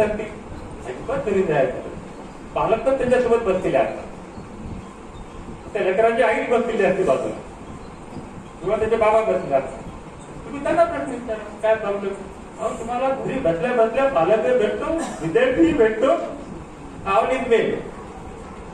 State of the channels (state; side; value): identical; both; correlation 1.00